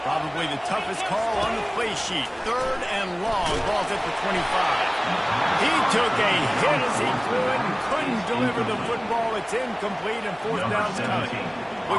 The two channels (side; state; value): both; identical; correlation 1.00